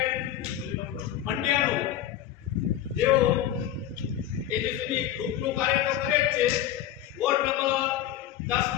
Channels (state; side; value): quieter; right; 11.6 dB